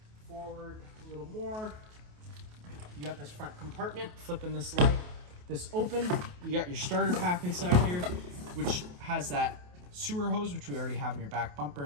Forward a little more. You got this front compartment, flipping this open. You got your starter pack inside here, which has that sewer hose, which we already have in your back bumper.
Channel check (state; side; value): late; left; 28 ms